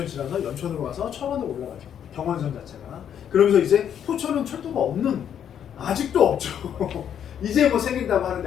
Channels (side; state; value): right; quieter; 9.1 dB